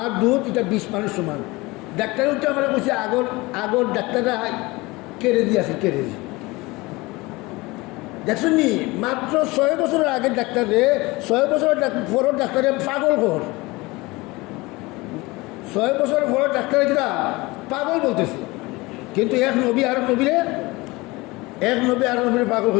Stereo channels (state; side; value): quieter; right; 22.6 dB